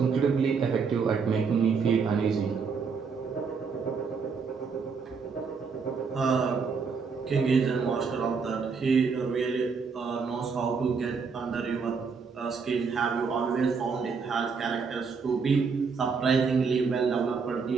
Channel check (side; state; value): left; quieter; 5.4 dB